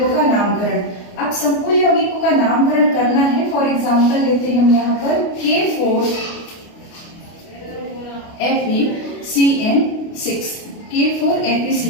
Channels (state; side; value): late; right; 29 ms